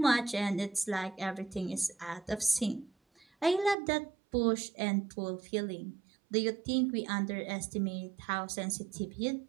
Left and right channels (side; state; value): left; drops out; at 3.8 s